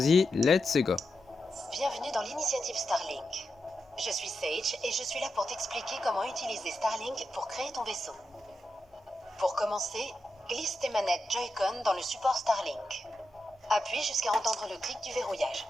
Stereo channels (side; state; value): both; normal; correlation 0.88